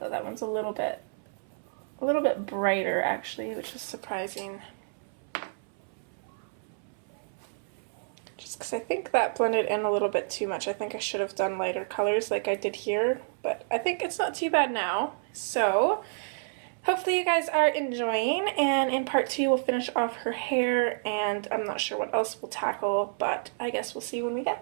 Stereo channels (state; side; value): silent; left; 57 dB below the other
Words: That one's a little bit brighter actually, which is surprising. Just because I think that blended in a little bit too much. I think I should have done lighter colors like I did here, but I think it's not too bad now. So hopefully you guys are enjoying, and in part 2 we'll finish off her hair, and I'm not sure what else we'll tackle, but I guess we'll see when we